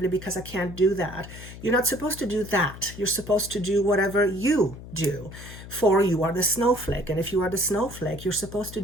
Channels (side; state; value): left; noise; hum, 14 dB below the sound